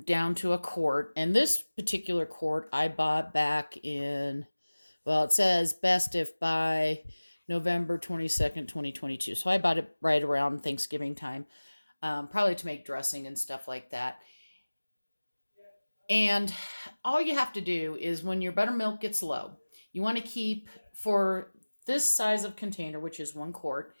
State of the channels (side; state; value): both; inverted; correlation -1.00